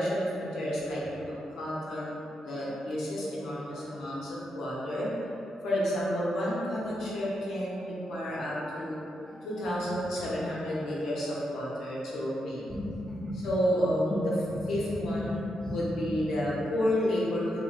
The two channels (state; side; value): normal; both; correlation 0.83